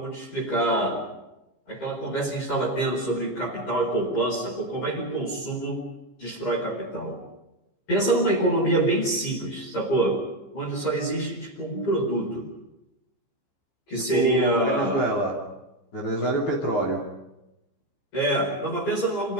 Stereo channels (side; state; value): right; late; 15 ms